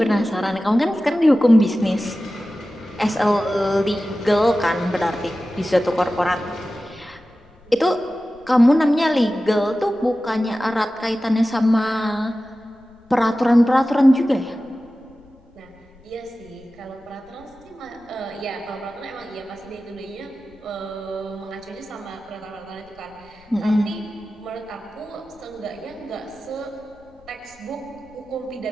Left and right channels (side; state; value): left; noise; rumble, 28 dB below the sound